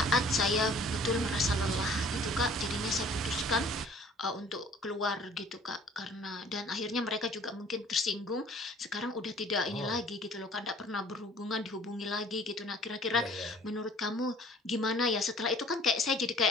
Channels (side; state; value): both; normal; correlation 0.53